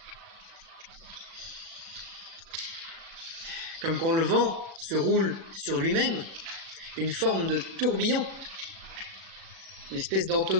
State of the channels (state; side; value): late; left; 36 ms